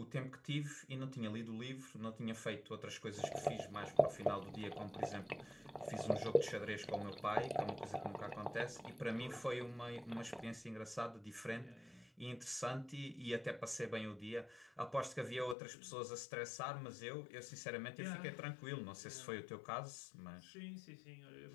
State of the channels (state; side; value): drops out; right; at 15.6 s